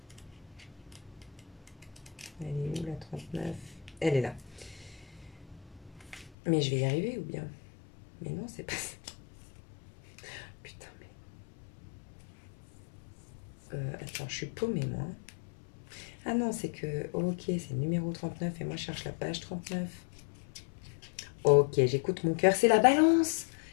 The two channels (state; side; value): drops out; right; at 6.3 s